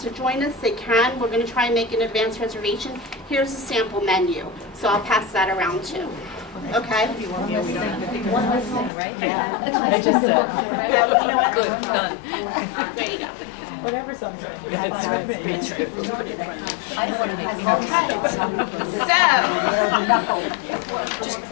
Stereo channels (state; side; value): drops out; right; at 8.9 s